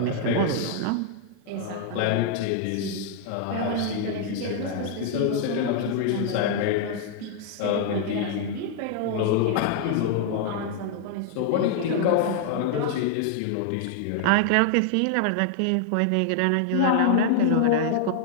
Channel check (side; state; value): both; different; correlation 0.00